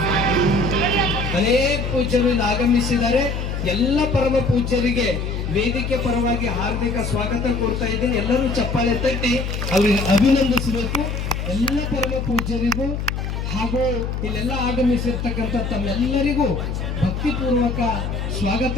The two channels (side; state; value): left; noise; hum, 3 dB below the sound